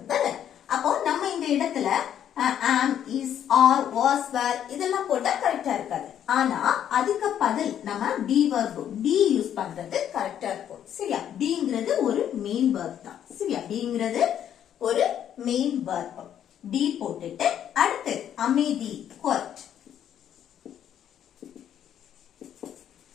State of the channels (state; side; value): quieter; right; 9.9 dB